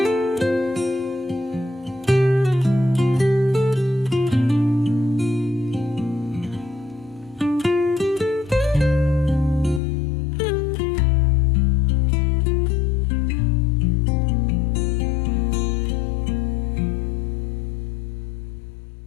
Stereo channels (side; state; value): right; drops out; at 9.8 s